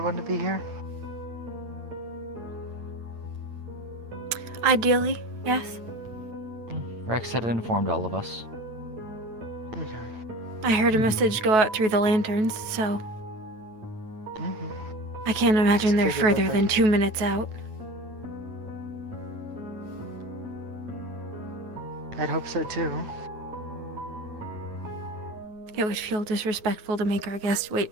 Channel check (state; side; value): late; left; 9.3 ms